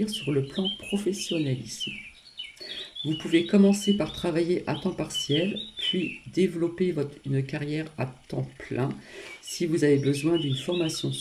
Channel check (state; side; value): identical; both; correlation 1.00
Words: sur le plan professionnel ici. Vous pouvez commencer par travailler à temps partiel, puis développer une carrière à temps plein si vous avez besoin d'une formation